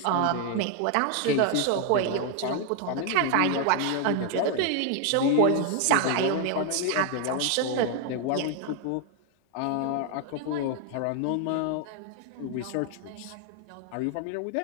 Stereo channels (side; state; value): both; different; correlation 0.00